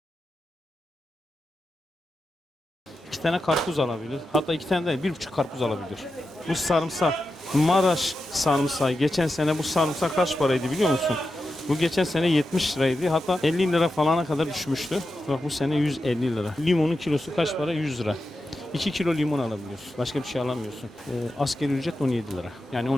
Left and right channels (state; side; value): normal; both; correlation 0.90